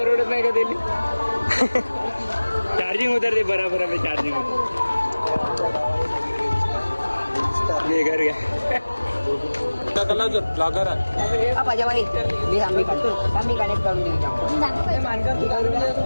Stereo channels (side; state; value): both; inverted; correlation -1.00